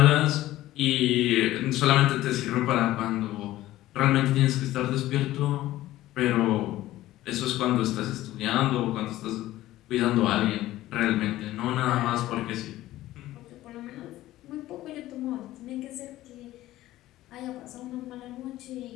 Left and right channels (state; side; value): quieter; right; 15.5 dB